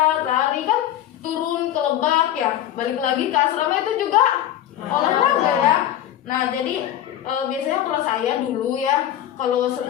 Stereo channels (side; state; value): right; quieter; 11.9 dB